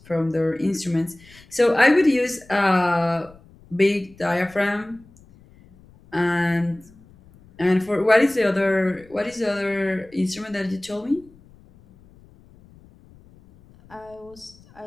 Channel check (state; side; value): noise; left; rumble, 26 dB below the sound